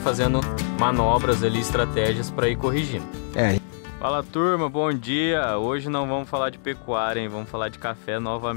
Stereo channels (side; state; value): right; silent; digital silence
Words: manobras ali, estratégias para ir corrigindo. Fala turma, bom dia! Hoje não vamos falar de pecuária, hein? Vamos falar de café